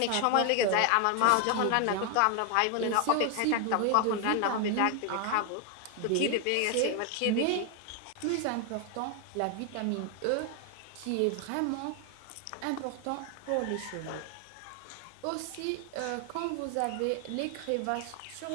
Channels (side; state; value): both; different; correlation 0.00